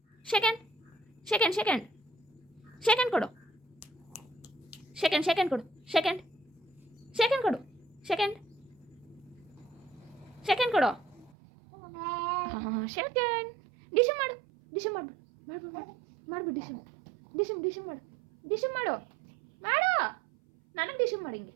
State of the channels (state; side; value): drops out; left; at 11.3 s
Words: Second second second second ಕೊಡು second second ಕೊಡು second second ಕೊಡು ಸೆಕೆಂಡ್ ಸೆಕೆಂಡ್ ಕೊಡು ಹಾಂ ಸೆಕೆಂಡ್ ಡಿಶಮ್ ಮಾಡು ಡಿಶಮ್ ಮಾಡು ಮಾಡ್ಬಿಡು ಡಿಶಮ್ ಡಿಶಮ್ ಡಿಶಮ್ ಮಾಡು ಡಿಶಮ್ ಮಾಡು ಮಾಡು ನನಗೆ ಡಿಶಮ್ ಮಾಡಿ ಹಿಂಗೆ